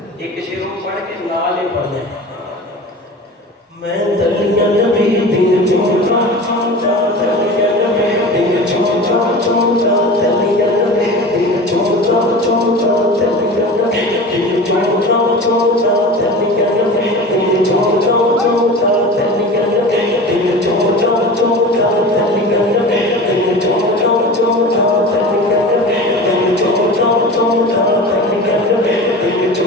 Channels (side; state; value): both; normal; correlation 0.34